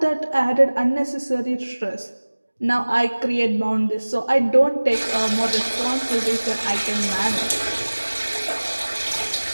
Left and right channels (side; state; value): both; inverted; correlation -1.00